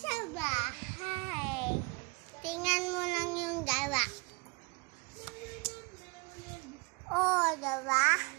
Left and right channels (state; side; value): quieter; left; 28.9 dB